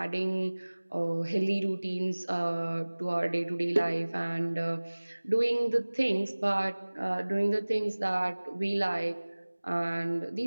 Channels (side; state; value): both; inverted; correlation -1.00